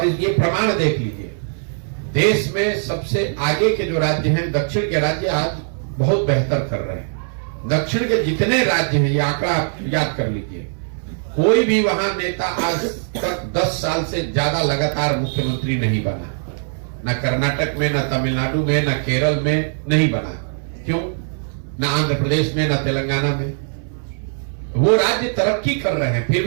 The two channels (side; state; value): left; silent; 64 dB below the other